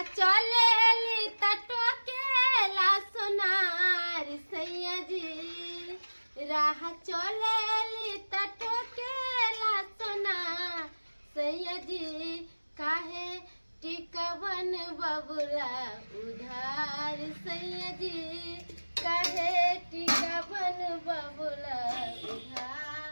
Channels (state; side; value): inverted; both; correlation -1.00